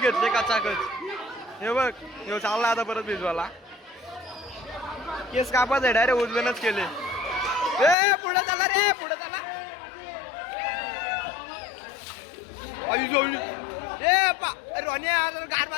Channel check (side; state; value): right; drops out; at 8.0 s